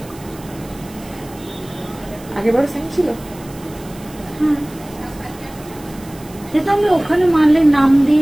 আগেবার সেম ছিল। হ্যাঁ, সেটা আমি ওখানে মানলে নাম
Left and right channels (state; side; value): noise; right; hiss, 21 dB below the sound